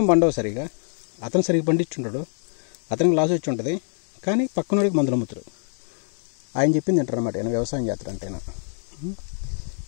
పండవు సరిగా, అతను సరిగ్గా పండించుంటాడు, అతనికి లాస్ వచ్చి ఉంటుంది, కానీ పక్కనోడికి మందులు అమ్ముతారు. ఆయన చెప్పింది అంటారు అన్నమాట, ఆయన వ్యవసాయం చేస్తారంటేనా.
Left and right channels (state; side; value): silent; right; 60 dB below the other